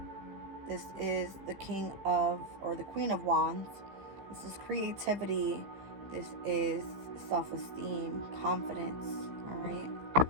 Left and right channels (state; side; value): late; left; 15 ms